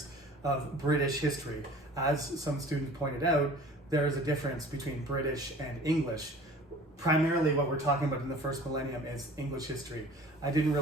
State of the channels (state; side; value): normal; both; correlation 0.46